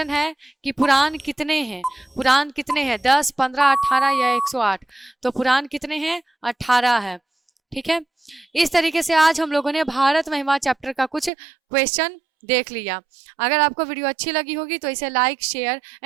है कि पुराण कितने हैं। पुराण कितने हैं, 10, 15, 18, या 108। तो पुराण कितने हैं, 18 है। ठीक है, इस तरीके से आज हम लोगों ने भारत महिमा चैप्टर का कुछ क्वेश्चन देख लिया। अगर आपको वीडियो अच्छी लगी होगी तो इसे लाइक, शेयर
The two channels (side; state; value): left; drops out; at 11.3 s